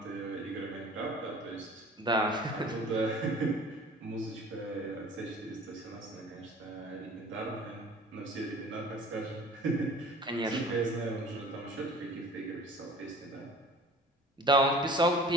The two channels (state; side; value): normal; both; correlation 0.45